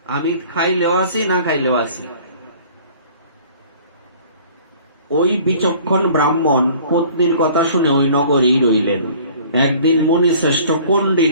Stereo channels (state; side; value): inverted; both; correlation -0.50